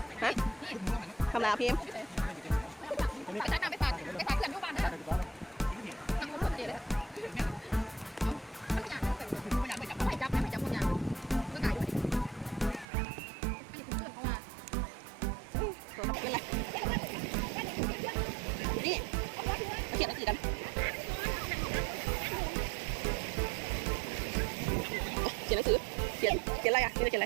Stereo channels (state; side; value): drops out; left; at 12.9 s